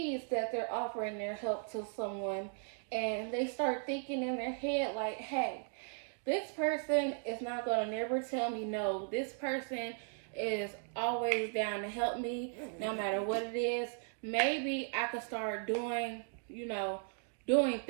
that they're offering their help to someone, and they start thinking in their head like, hey, this person is not going to never tell me no. This person is always down to help me no matter what it is. Maybe I could start doing, you know, doing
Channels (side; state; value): left; silent; 53 dB below the other